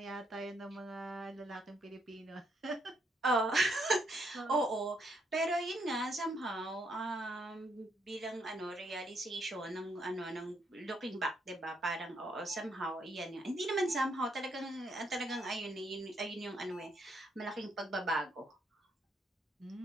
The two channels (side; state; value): both; normal; correlation 0.74